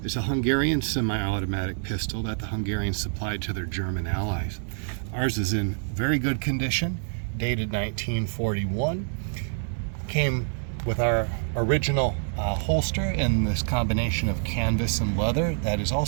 It's a Hungarian semi-automatic pistol that the Hungarians supplied to their German allies. Ours is in very good condition, dated 1941. Came with our original holster in this combination of canvas and leather. That is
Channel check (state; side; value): silent; left; 60 dB below the other